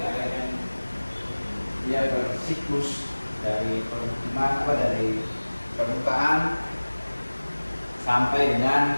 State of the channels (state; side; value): inverted; both; correlation -1.00